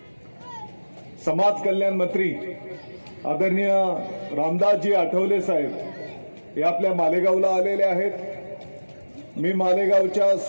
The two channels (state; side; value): inverted; both; correlation -1.00